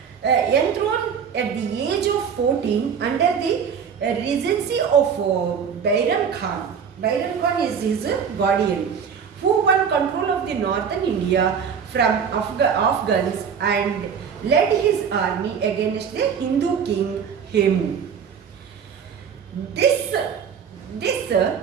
enthroned at the age of 14 under the regency of Bairam Khan. Bairam Khan is his guardian, who won control of the northern India from Afghans and led his army against the Hindu king Hemu. This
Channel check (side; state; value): left; quieter; 7.1 dB